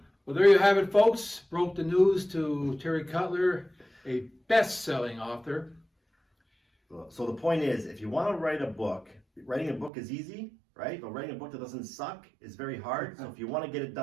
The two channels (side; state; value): left; drops out; at 9.9 s